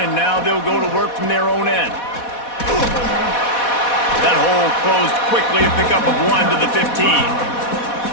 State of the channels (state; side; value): late; right; 4.1 ms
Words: and now they'll go to work from their own end. That hole closed quickly, a pickup of 1 to the 15.